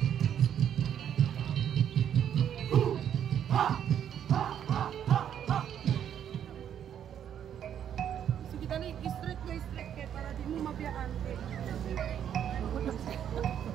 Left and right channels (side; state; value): left; quieter; 9.4 dB